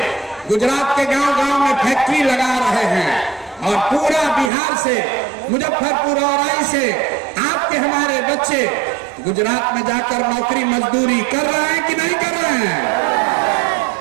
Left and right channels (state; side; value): drops out; left; at 4.5 s